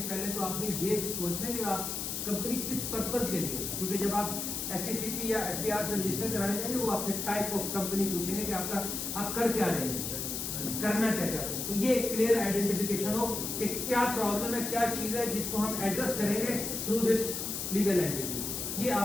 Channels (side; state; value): left; noise; hiss, 3 dB below the sound